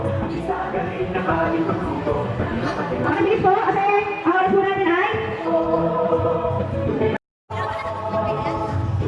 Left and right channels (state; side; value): identical; both; correlation 1.00